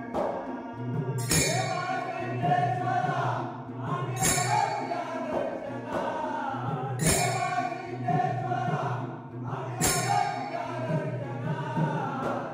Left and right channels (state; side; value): identical; both; correlation 1.00